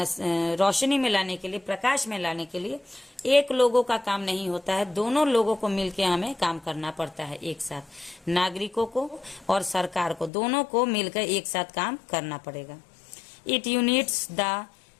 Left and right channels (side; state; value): right; drops out; at 10.3 s